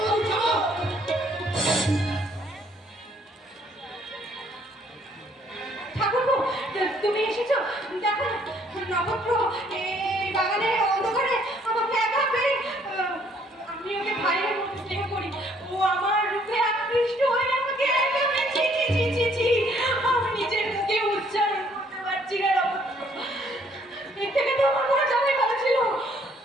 বৌদি, ছাড়ো। ঠাকুরপো, তুমি এসেছো? দেখো নক্ষত্র এই বাগানের অন্ধকারে আমাকে একা পেয়ে, আমি ওকে ভাইয়ের মতো স্নেহ করি, ও আমার রূপে আকৃষ্ট হয়ে আমাকে একা পেয়ে ছি ছি ছি ছি ছি, আমি নিজের মুখে উচ্চারণ করতে পারছি না নক্ষত্র। এর থেকে তো আমার মনে যাবে ভালো ছিল।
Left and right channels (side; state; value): both; normal; correlation 0.64